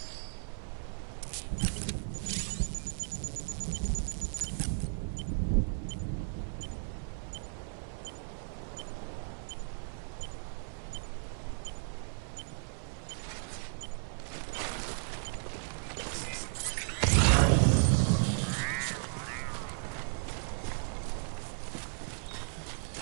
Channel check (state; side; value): silent; left; 54 dB below the other